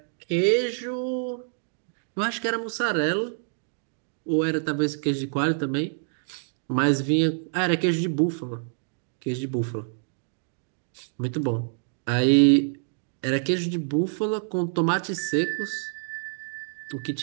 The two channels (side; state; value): left; silent; digital silence